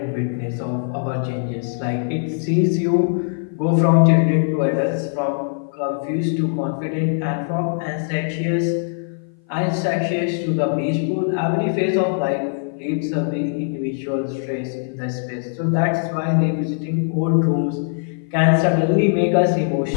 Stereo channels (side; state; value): right; silent; 57 dB below the other